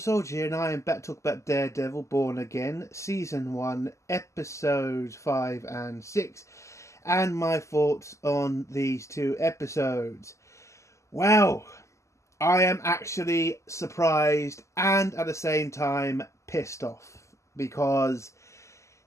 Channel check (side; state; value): right; late; 0.14 ms